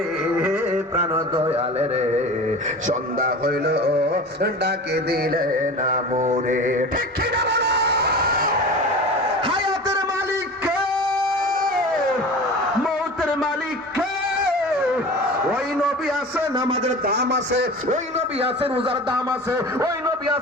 প্রাণ দয়াল রে সন্ধ্যা হইল ডাকে দিলে না মোরে। ঠিক কিনা বলো? হায়াতের মালিক কে, মৌতের মালিক কে? ওই নবী আছে নামাজের দাম আছে, ওই নবী আছে রোজার দাম আছে, ওই নবী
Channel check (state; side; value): normal; both; correlation 0.34